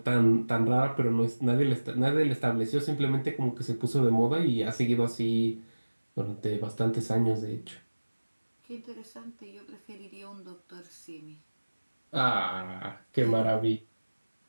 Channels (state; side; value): inverted; both; correlation -1.00